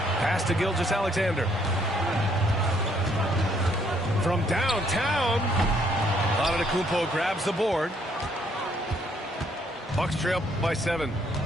Pass to Gilgeous-Alexander. From downtown, Antetokounmpo grabs the board. Bucks trail by 7.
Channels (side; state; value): both; normal; correlation 0.68